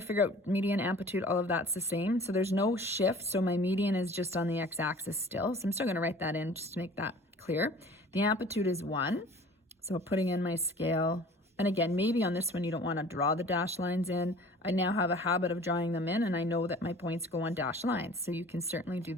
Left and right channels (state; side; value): normal; both; correlation 0.47